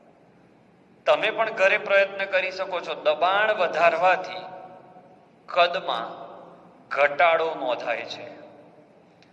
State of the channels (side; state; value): both; identical; correlation 1.00